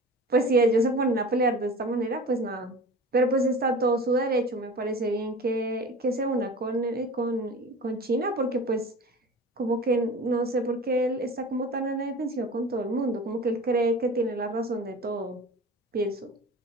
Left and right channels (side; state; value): both; normal; correlation 0.37